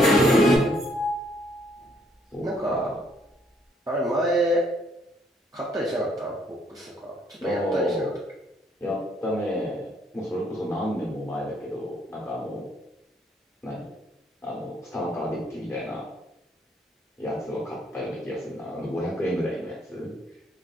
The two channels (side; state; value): both; normal; correlation 0.68